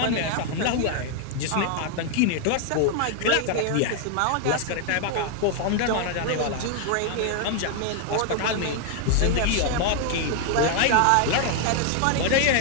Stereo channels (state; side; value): different; both; correlation 0.00